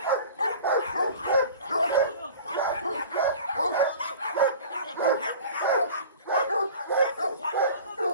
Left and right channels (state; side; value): inverted; both; correlation -0.40